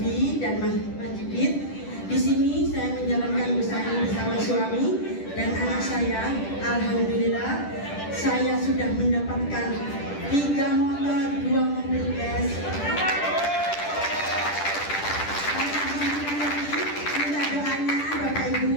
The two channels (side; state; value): right; late; 10 ms